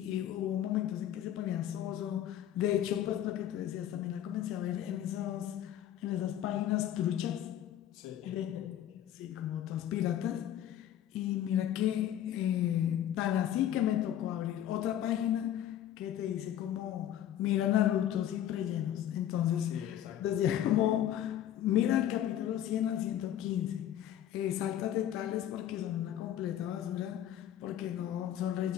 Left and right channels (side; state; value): right; quieter; 11.3 dB